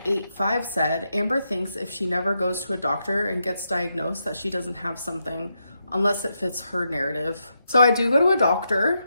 said, Amber thinks if she never goes to a doctor and gets diagnosed that she doesn't have something unless it fits her narrative. So I do go to a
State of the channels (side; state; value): both; inverted; correlation -0.83